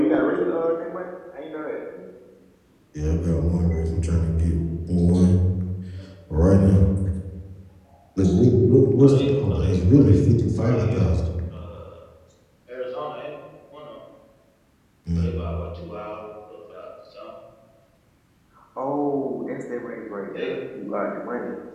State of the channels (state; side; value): identical; both; correlation 1.00